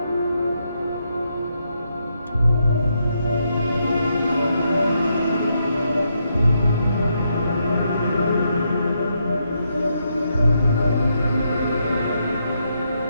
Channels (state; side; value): inverted; both; correlation -0.79